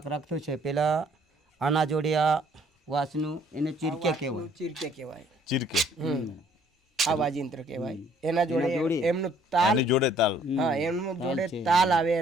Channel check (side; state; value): both; normal; correlation 0.61